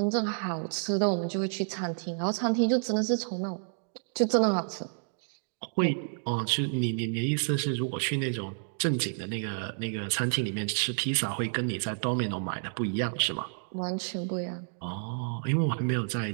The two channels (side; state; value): left; silent; digital silence